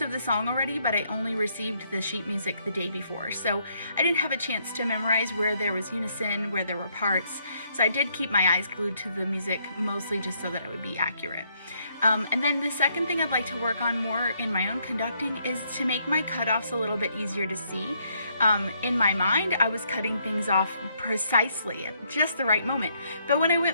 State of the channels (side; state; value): both; inverted; correlation -0.72